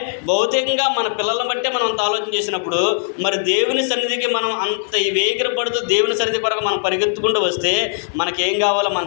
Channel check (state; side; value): silent; right; digital silence